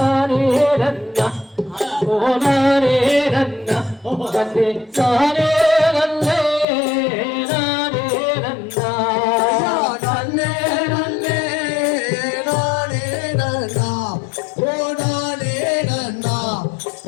ரன்னா ஓ நானே ரன்னா கண்ணே நானே நல்லே நானே ரன்னா நானே நானே நானே நானா ஓ நானே நானா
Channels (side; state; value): right; drops out; at 6.7 s